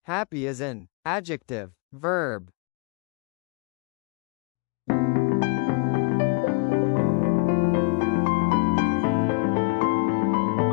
Happy is an adjective, verb.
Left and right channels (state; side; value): quieter; right; 31.8 dB